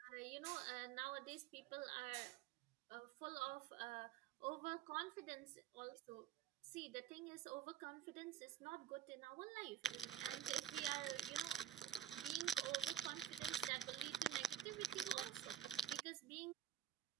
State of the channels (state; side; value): quieter; left; 9.6 dB